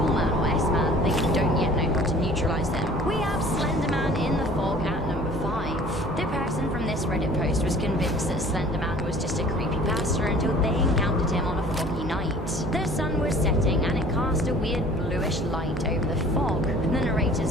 Slender Man was just a creepypasta until they encountered him on a foggy night. The sun was setting and it cast a weird bluish light over the fog. The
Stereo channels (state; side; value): normal; both; correlation 0.49